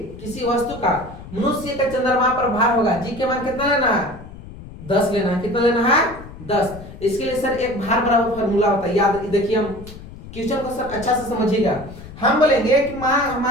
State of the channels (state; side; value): noise; left; rumble, 15 dB below the sound